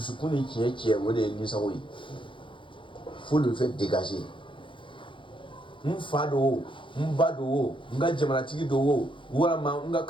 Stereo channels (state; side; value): late; right; 0.24 ms